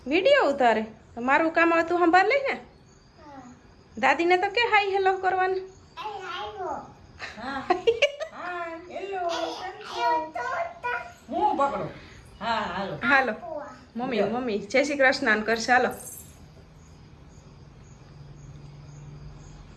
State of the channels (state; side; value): identical; both; correlation 1.00